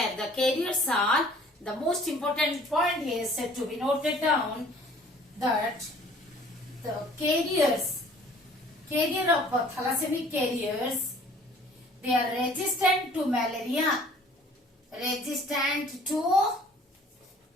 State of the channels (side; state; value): both; normal; correlation 0.53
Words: the carriers are, the most important point is to be noted down that the carrier of thalassemia carriers, they are resistant to malaria.